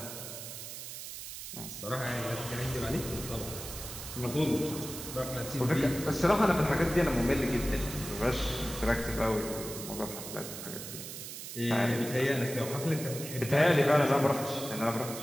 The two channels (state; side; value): noise; right; hiss, 9 dB below the sound